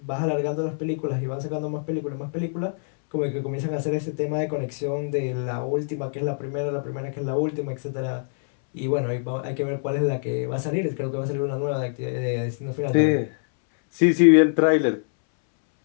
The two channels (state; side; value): silent; right; 62 dB below the other